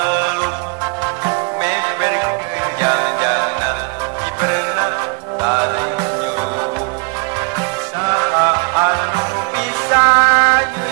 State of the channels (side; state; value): left; quieter; 32.9 dB